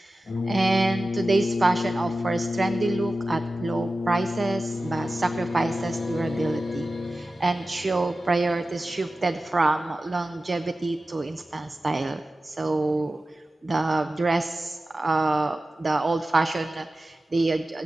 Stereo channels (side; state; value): both; normal; correlation 0.95